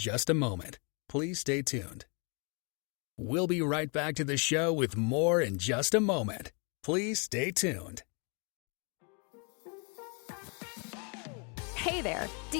a moment. Please stay tuned. We'll be right back to the show with more in just a moment. Please stay tuned. Hey there, do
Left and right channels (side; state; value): right; quieter; 35.7 dB